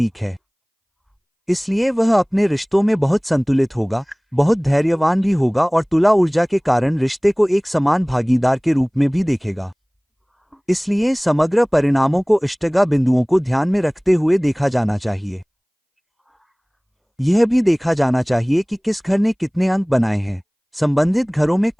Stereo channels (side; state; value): both; identical; correlation 1.00